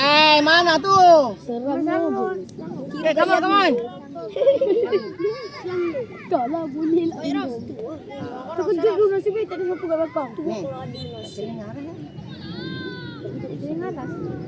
Mana tu? Seram je. Come on. Tak lah, boleh lah. Terkejut dulu nasib baik tak ada siapa kat belakang. Tengah atas.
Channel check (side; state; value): both; identical; correlation 1.00